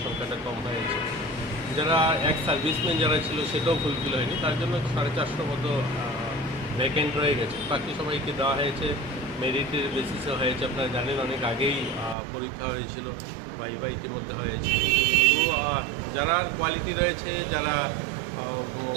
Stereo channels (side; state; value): left; drops out; at 12.2 s